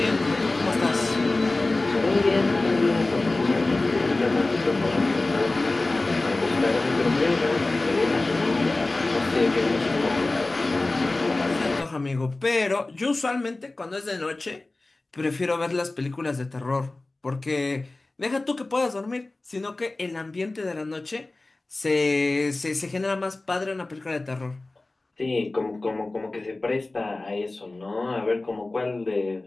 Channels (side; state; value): right; quieter; 3.1 dB